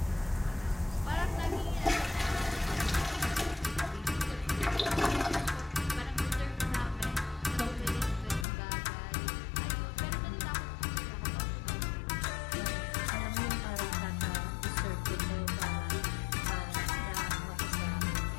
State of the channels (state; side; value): drops out; right; at 8.5 s